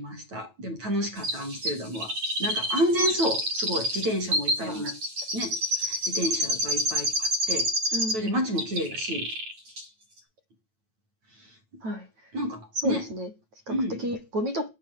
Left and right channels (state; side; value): late; left; 9.1 ms